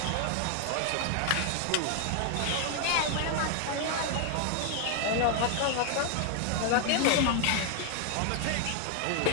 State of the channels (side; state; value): both; different; correlation 0.00